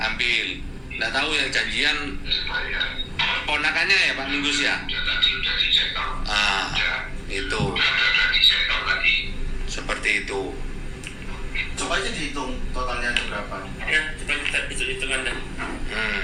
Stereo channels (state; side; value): identical; both; correlation 1.00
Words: Nggak tahu yang janjian ponakannya ya Pak Minggu ya. Itu seperti itu. Coba aja dihitung totalnya ada berapa. Ya, coba kita hitung Anda.